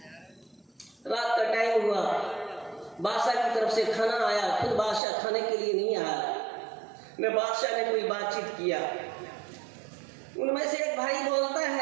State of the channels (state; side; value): drops out; left; at 5.0 s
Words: रात का टाइम हुआ, बादशाह की तरफ से खाना आया, खुद बादशाह खाने के लिए नहीं आया, न बादशाह ने कोई बातचीत किया। उनमें से एक भाई बोलता